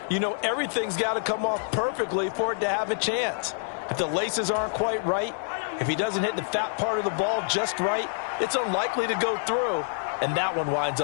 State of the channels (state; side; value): silent; right; digital silence